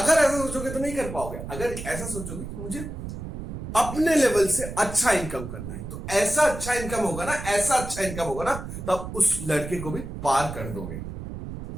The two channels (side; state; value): right; noise; rumble, 8 dB below the sound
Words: ऐसा सोचोगे तो नहीं कर पाओगे। अगर ऐसा सोचोगे कि मुझे अपने लेवल से अच्छा इनकम करना है, तो ऐसा अच्छा इनकम होगा ना, ऐसा अच्छा इनकम होगा ना, तब उस लड़के को भी पार कर दोगे।